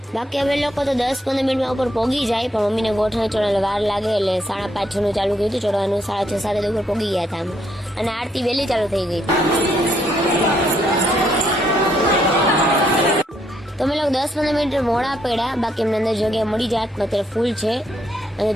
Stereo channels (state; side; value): normal; both; correlation 0.73